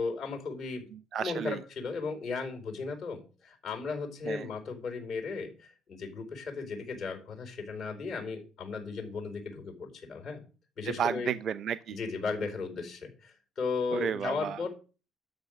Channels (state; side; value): normal; both; correlation 0.73